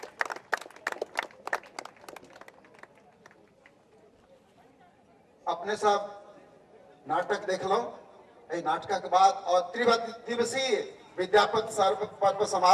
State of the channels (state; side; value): identical; both; correlation 1.00